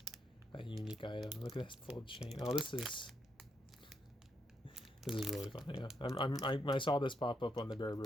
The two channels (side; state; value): both; normal; correlation 0.79